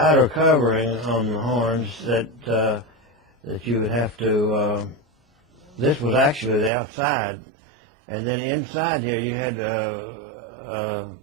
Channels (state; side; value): drops out; left; at 6.7 s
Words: covering on the horns that you would have to, this was actually the outside, and then inside here you had a